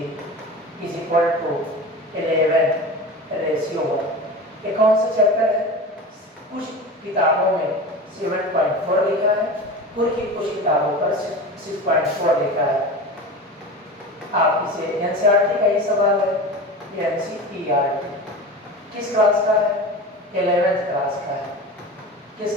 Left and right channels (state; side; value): normal; both; correlation 0.31